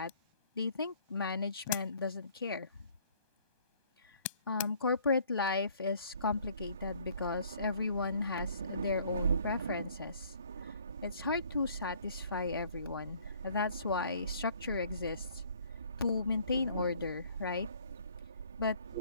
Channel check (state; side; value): inverted; both; correlation -0.58